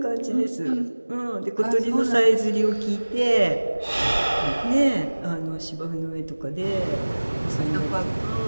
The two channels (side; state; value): both; inverted; correlation -1.00